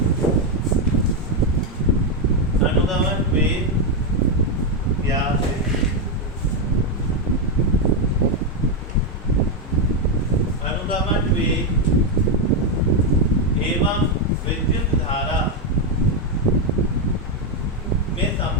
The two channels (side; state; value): both; normal; correlation 0.04